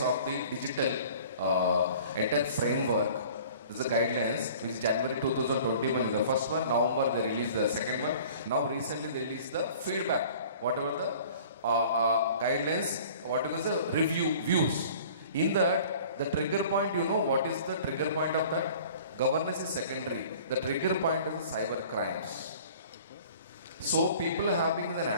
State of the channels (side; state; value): both; inverted; correlation -0.47